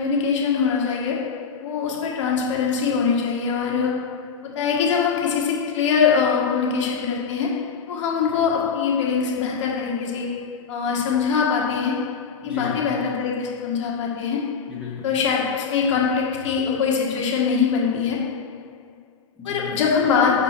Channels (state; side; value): quieter; right; 5.9 dB